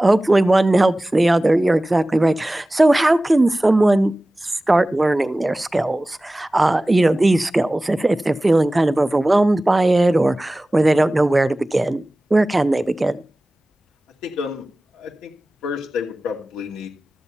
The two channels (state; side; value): normal; both; correlation 0.97